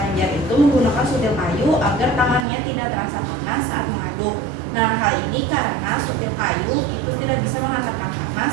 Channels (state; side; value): drops out; left; at 2.5 s